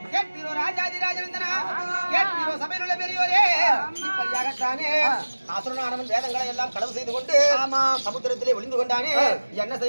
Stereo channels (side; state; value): both; inverted; correlation -1.00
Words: கேட்பீரோ ராஜாதிராஜனந்தனா, கேட்பீரோ சபையிலுள்ள பெரியோரே, இப்படியாகத்தானே அசுரனானவன் வேதங்களை எல்லாம் களவு செய்து கொண்டு சமுத்திரத்திலே ஒளிந்து கொண்டானே. என்ன